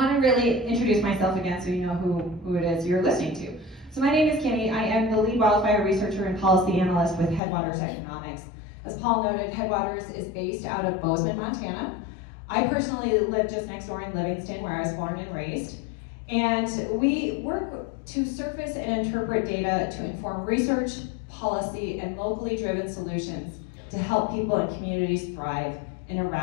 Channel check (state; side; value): drops out; right; at 7.4 s